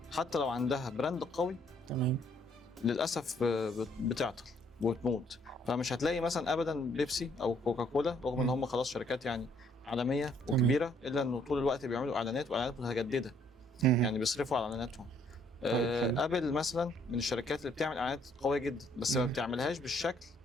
حتى لو عندها براند قوي تمام. للاسف بتعطل وتموت. فمش هتلاقي مثلا ابدا بيبسي او كوكاكولا رغم ان هم خلاص شركات يعني عالميه وكبيره الا انه طول الوقت بيعملوا اعلانات واعلانات متجدده، يعني بيصرفوا على اعلاناتهم. ابل مثلا من الشركات اللي بتعمل اعلانات قويه جدا بس ما بتعملهاش بالشكل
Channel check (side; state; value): both; normal; correlation 0.66